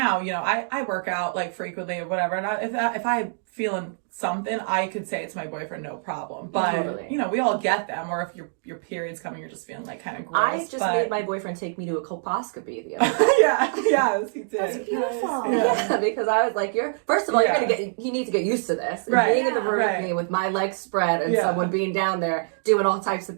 I work out like frequently or whatever, and if I feeling something, I could say it to my boyfriend, no problem. But we all get them. Or if your period's coming, you're just feeling like kind of gross. I just made my boyfriend take me to a colposcopy the other day. Yes, he did. That's beautiful. Yeah, because I was like, first of all, you need to get used to this. Right. Being in the room with me with my legs spread and someone being down there doing all types of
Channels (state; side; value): silent; left; digital silence